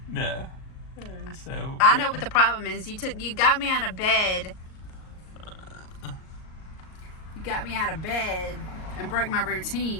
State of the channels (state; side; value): late; right; 38 ms